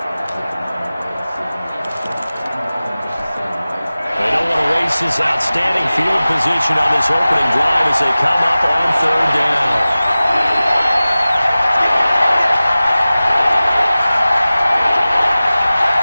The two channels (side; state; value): both; inverted; correlation -0.97